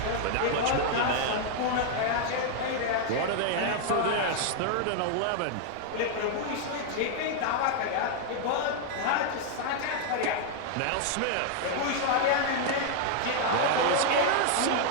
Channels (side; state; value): both; different; correlation 0.00